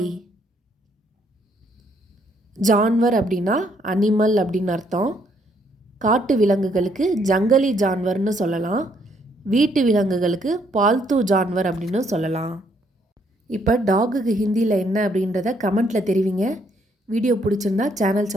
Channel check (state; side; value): normal; both; correlation 0.70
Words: ஜான்வர் அப்படின்னா அனிமல் அப்படின்னு அர்த்தம். காட்டு விலங்குகளுக்கு ஜங்கலி ஜான்வர்னு சொல்லலாம், வீட்டு விலங்குகளுக்கு பால்து ஜான்வர் அப்படின்னு சொல்லலாம். இப்போ டாகுக்கு ஹிந்தியில் என்ன அப்படின்றத கமெண்ட்டில் தெரிவிங்க. வீடியோ பிடிச்சிருந்தா சேனல்